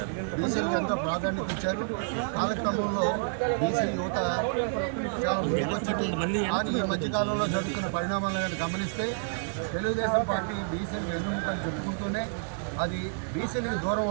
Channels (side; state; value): left; silent; digital silence